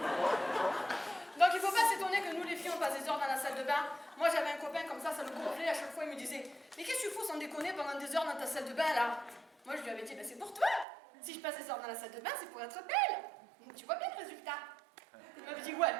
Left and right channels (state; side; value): drops out; left; at 10.9 s